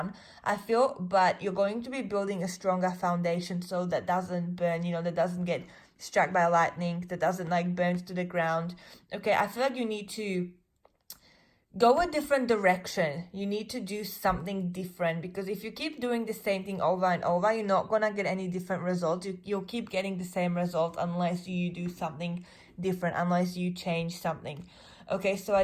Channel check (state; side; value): identical; both; correlation 1.00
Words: I feel, but you're going to be building a stronger foundation so that doesn't burn, that doesn't get struck by lightning, that doesn't like burn to the ground. Okay, I feel like you need to go a different direction. You need to do something different, because if you keep doing the same thing over and over, you're not gonna get any different results. You'll keep getting the same result unless you do something different, unless you change something. Okay, so I